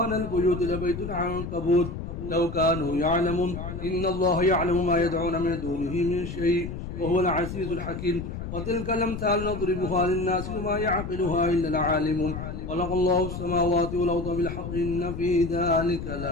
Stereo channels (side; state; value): left; noise; rumble, 7 dB below the sound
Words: البيوت لبيت العنكبوت لو كانوا يعلمون إن الله يعلم ما يدعون من دونه من شيء وهو العزيز الحكيم وتلك الأمثال نضربها للناس وما يعقلها إلا العالمون خلق الله السماوات والأرض بالحق إن في ذلك